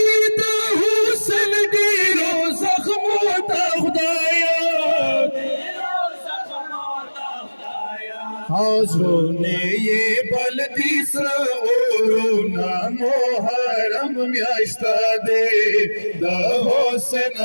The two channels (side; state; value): both; inverted; correlation -1.00